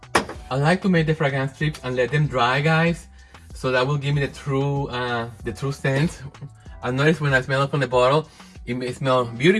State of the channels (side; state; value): both; identical; correlation 1.00